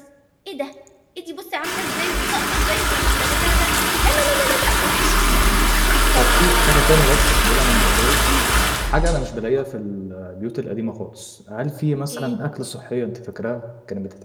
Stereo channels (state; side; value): identical; both; correlation 1.00